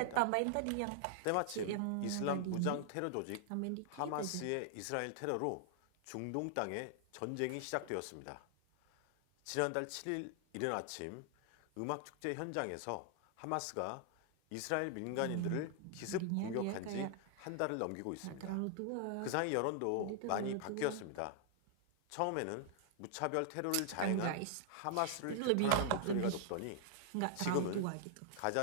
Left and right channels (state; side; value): different; both; correlation 0.00